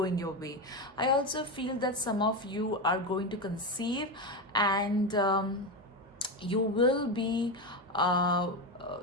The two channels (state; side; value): normal; both; correlation 0.15